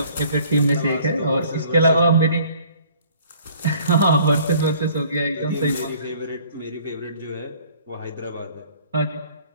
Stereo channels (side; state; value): both; inverted; correlation -0.55